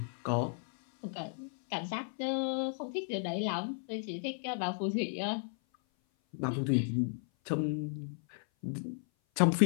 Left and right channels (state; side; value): silent; right; 55 dB below the other